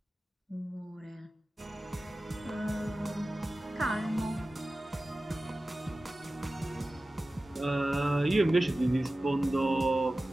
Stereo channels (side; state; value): both; normal; correlation 0.96